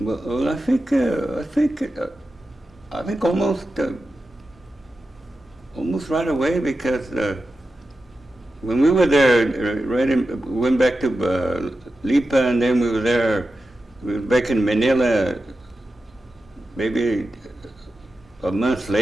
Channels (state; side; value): normal; both; correlation 0.92